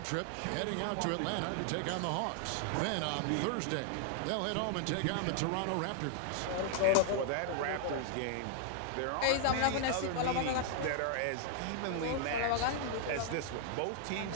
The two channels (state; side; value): different; both; correlation 0.00